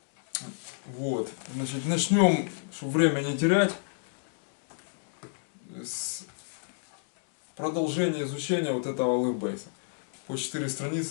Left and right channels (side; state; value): right; silent; digital silence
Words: Вот. Значит, начнем, чтобы время не терять, с продолжения изучения вот этого алефбейса. По 4